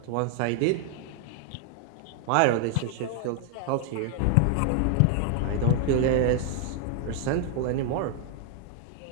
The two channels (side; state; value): both; different; correlation 0.00